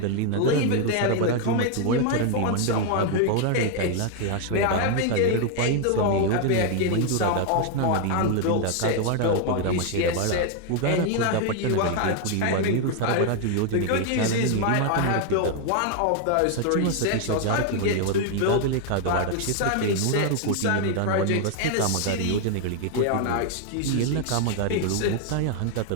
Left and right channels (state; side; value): different; both; correlation 0.00